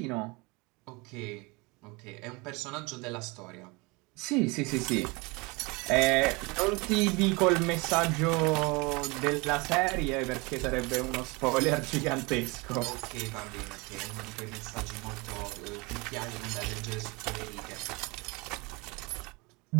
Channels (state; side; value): quieter; left; 26.6 dB